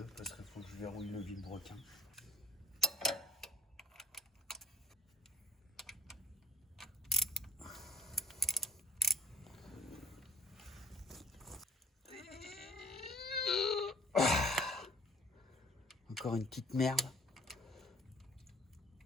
parce qu'il faut que je verrouille le vilebrequin. Encore une petite merde.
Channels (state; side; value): normal; both; correlation 0.53